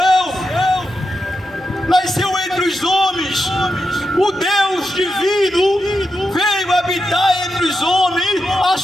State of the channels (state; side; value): normal; both; correlation 0.87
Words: entre os homens. O Deus divino veio habitar entre os homens,